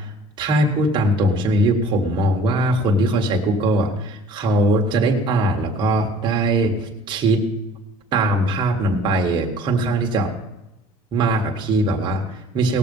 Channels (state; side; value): normal; both; correlation 0.51